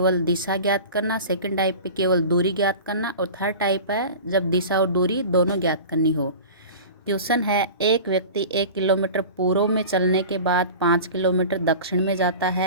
दिशा ज्ञात करना, सेकंड टाइप पे केवल दूरी ज्ञात करना, और थर्ड टाइप है जब दिशा और दूरी दोनों ज्ञात करनी हो। क्वेश्चन है, एक व्यक्ति 1 किलोमीटर पूर्व में चलने के बाद 5 किलोमीटर दक्षिण में जाता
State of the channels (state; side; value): inverted; both; correlation -0.36